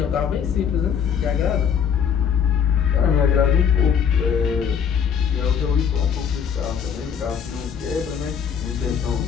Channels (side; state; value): right; quieter; 7.5 dB